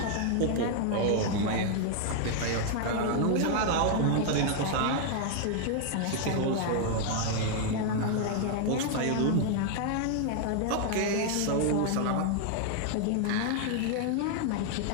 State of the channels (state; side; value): different; both; correlation 0.00